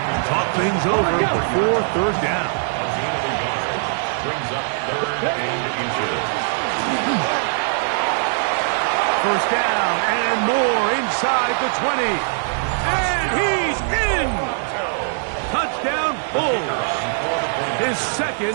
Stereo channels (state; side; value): silent; left; digital silence